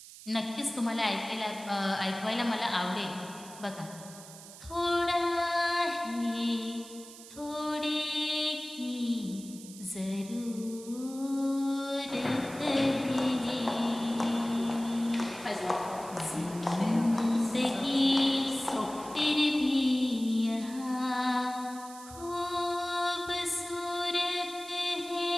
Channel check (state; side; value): noise; right; hiss, 16 dB below the sound